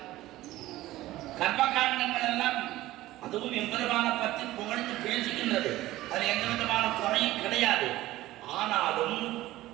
கர்மகாண்டங்கள் எல்லாம் அதுவும் எம்பெருமான பற்றி புகழ்ந்து பேசுகின்றது. அது எந்த விதமான குறையும் கிடையாது. ஆனாலும்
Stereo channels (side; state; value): left; quieter; 16.4 dB